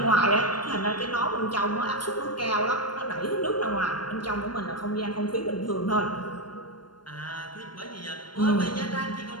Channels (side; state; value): right; late; 0.71 ms